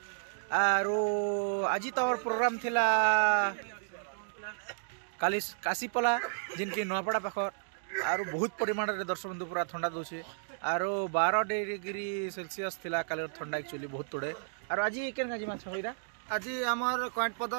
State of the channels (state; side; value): silent; left; digital silence